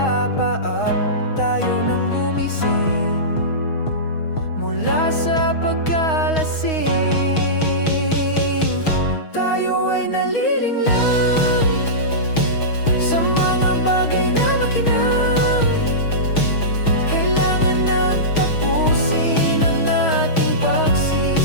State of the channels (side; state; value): right; late; 6.3 ms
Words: Tayo nang gumising mula sa pagkalasing. Tayo ay nalilinglang sa mga bagay na makinang. Kailangan